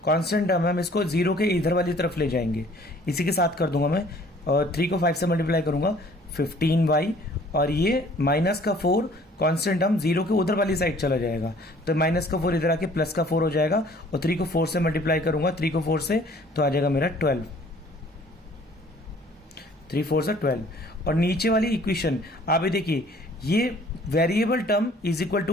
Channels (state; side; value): normal; both; correlation 0.55